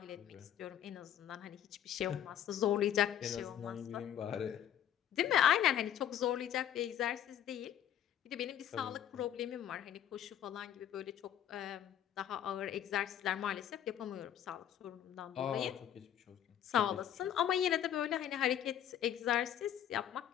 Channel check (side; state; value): right; quieter; 10.4 dB